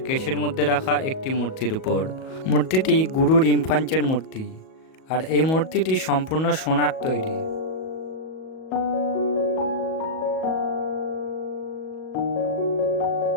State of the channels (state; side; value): late; right; 38 ms